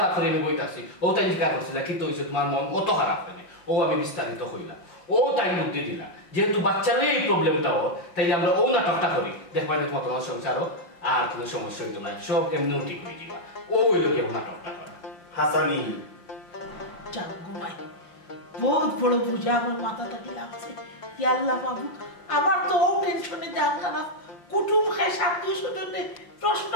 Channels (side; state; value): right; late; 5.7 ms